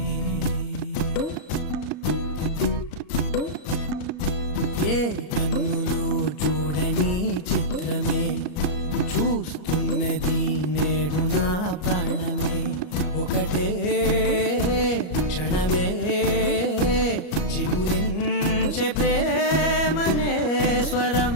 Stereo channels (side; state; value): right; late; 34 ms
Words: ఏ కన్నులు చూడని చిత్రమే చూస్తున్నది నేడు నా ప్రాణమే. ఒకటే క్షణమే చిగురించే ప్రేమనే స్వరం